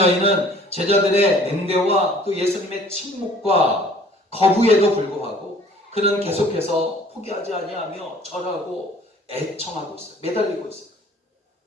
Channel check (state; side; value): normal; both; correlation 0.53